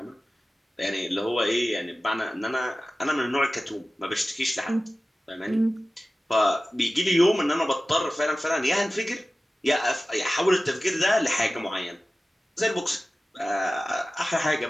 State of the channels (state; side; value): normal; both; correlation 0.96